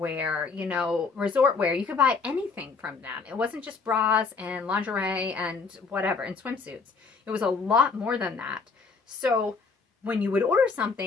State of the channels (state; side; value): quieter; right; 4.7 dB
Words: resort wear. You could buy anything from them. It wasn't just bras and lingerie and whatever, and swimsuits. It was a lot more than that. So when you would order